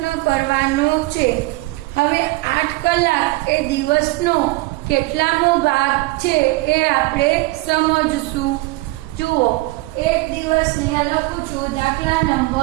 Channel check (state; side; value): quieter; left; 21.5 dB